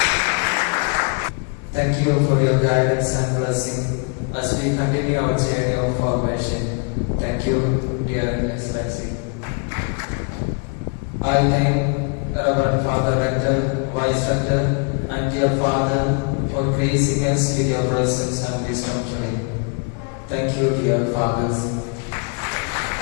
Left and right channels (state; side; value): quieter; right; 36.4 dB